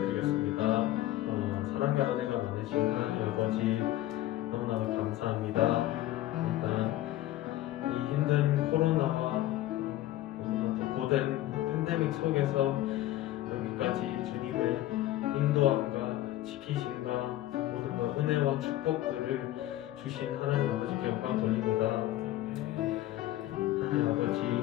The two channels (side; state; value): right; quieter; 14.8 dB